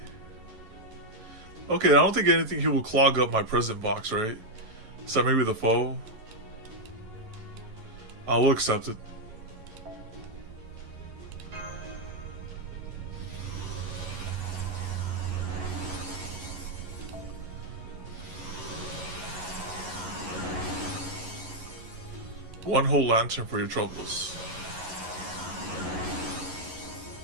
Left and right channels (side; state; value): left; late; 11 ms